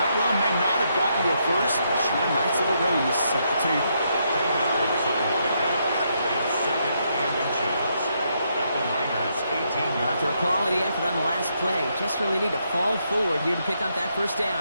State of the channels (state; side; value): inverted; both; correlation -0.77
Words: run may not have gotten to a first, but sure a nice little run to set the table. 10 yards on the pickup. It's second and inches at the Niners' 18-yard After a quality effort on the last play, just really need to fall forward here to pick up that first